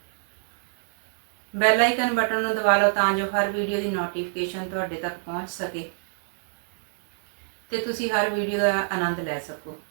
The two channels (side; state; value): left; silent; digital silence